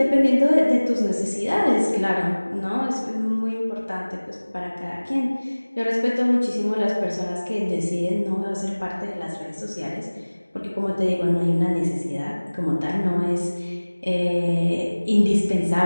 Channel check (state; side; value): inverted; both; correlation -1.00